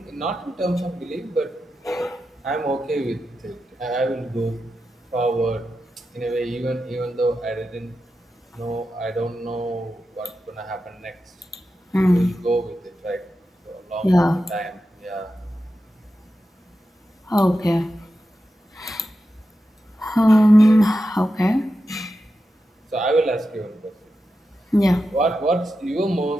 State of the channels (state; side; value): normal; both; correlation 0.90